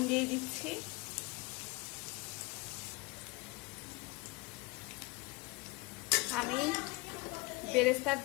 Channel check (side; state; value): right; quieter; 24.3 dB